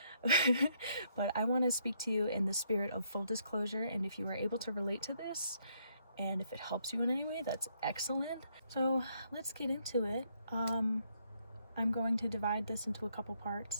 But I want to speak to you in the spirit of full disclosure, and if you are able to relate to this, and if it helps you in any way, that's excellent. So let's get into it. I'm going to divide this into a couple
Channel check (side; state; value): both; inverted; correlation -0.73